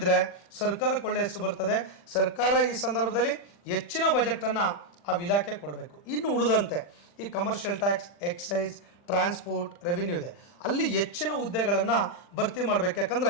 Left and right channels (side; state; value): right; late; 40 ms